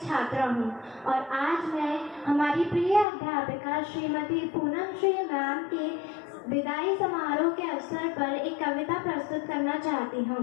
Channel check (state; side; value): drops out; right; at 3.1 s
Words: हूँ और आज मैं हमारी प्रिय अध्यापिका श्रीमती पूनम श्री मैम के विदाई समारोह के अवसर पर एक कविता प्रस्तुत करना चाहती हूँ।